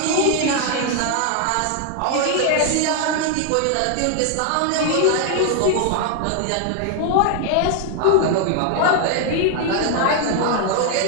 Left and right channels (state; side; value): different; both; correlation 0.00